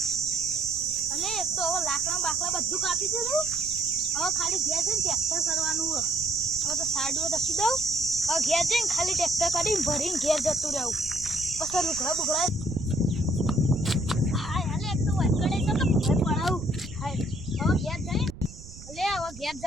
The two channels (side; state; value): right; noise; rumble, 16 dB below the sound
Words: અને એક તો હવે લાકડા બાકડા બધું કાપી દીધું. હવે ખાલી ઘેર જઈને ટ્રેક્ટર કરવાનું હોય. હવે તો સાડીઓ દસી દઉં. હવે ઘેર જઈને ખાલી ટ્રેક્ટર કરીને ભરીને ઘેર જતું રહેવું. પછી લુગડા બુગડા હાય હાલે એક તો વળગડે તો ઘર પડાવું. હાય હવે ઘેર જઈને હવે ઘેર